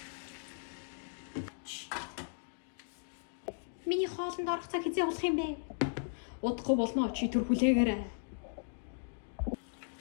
Миний хоолнд орох цаг хизээ болох юм бэ? Удахгүй болно. Чи төр хүлээгээрэй.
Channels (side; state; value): right; silent; digital silence